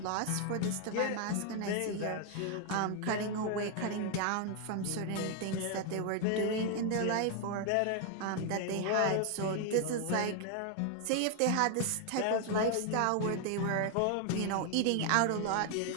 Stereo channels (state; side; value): different; both; correlation 0.00